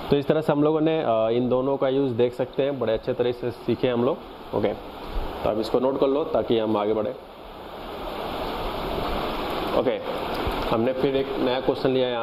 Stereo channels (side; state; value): both; identical; correlation 1.00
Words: तो इस तरह से हम लोगों ने इन दोनों का यूज़ देख सकते हैं, बड़े अच्छे तरह से सीखे हम लोग। ओके, तो अब इसको नोट कर लो ताकि हम आगे बढ़े। ओके, हमने फिर एक नया क्वेश्चन लिया है